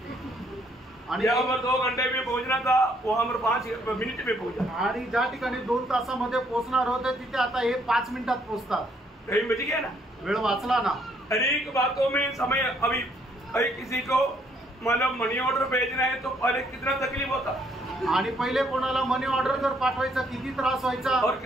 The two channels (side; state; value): both; normal; correlation 0.68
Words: आणि यहाँ पर 2 घंटे में पहुंचना था, वहाँ पर 5 मिनट में पहुंचा, आणि ज्या ठिकाणी 2 तासामध्ये पोहोचणार होते तिथे आता हे 5 मिनिटात पोहोचतात। टाइम बच गया ना, वेळ वाचला ना। अनेक बातों में समय, अभी किसी को मतलब मनी ऑर्डर भेजना है तो पहले कितना तकलीफ होता, आणि पहिले कोणाला मनी ऑर्डर जर पाठवायचा किती त्रास व्हायचा, और